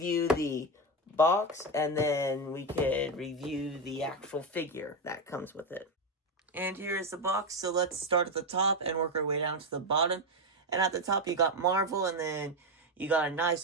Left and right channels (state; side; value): normal; both; correlation 0.11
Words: the box, and then we could review the actual figure that comes with it. And here is the box. So let's start at the top and work our way down to the bottom. And at the top, you got Marvel, and then you got a nice